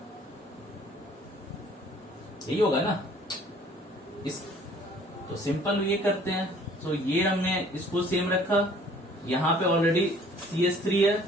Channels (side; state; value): both; normal; correlation 0.55